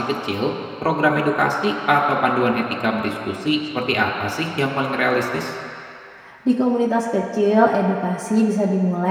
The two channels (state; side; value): identical; both; correlation 1.00